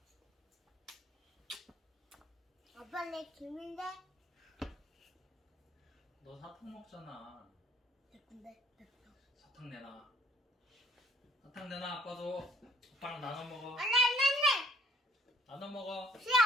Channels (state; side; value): normal; both; correlation 0.61